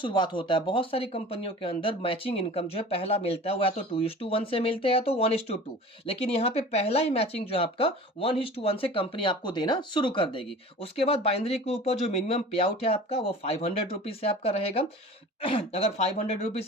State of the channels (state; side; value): normal; both; correlation 0.40